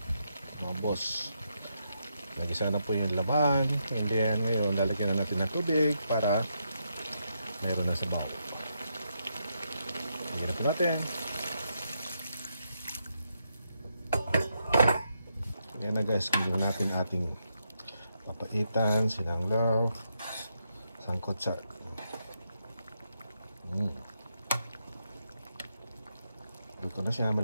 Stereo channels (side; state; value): both; inverted; correlation -0.81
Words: mga boss, nagisa na po yung laman. And then ngayon lalagyan na natin ng tubig para meron na sabaw. Lagyan na po natin. Ayan na guys, gawin natin ating papaitan, sinanglaw, sangkotsa. Luto na siya,